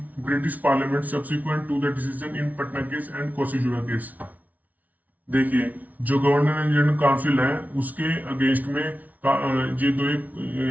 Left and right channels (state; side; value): late; left; 0.074 ms